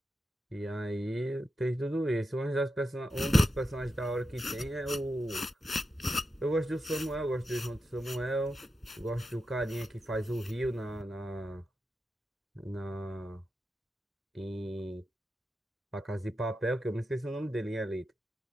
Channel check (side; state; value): both; normal; correlation 0.89